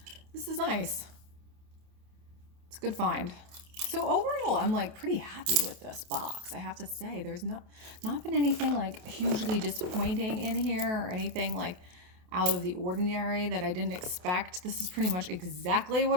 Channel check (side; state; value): left; late; 28 ms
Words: It's a good find. So overall, I'm like pretty happy with this box. I have to say, there's not been anything like hugely disappointing in here, or anything like out of the ordinary that I didn't expect. This is pretty much exactly